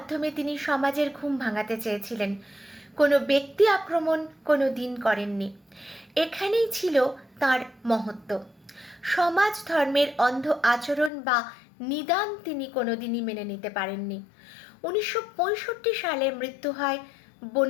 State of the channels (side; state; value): right; drops out; at 11.1 s